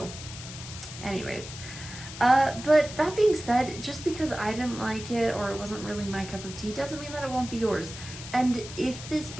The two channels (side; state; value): left; noise; hiss, 12 dB below the sound